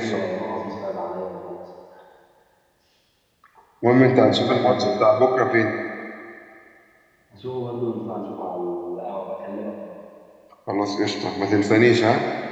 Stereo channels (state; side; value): identical; both; correlation 1.00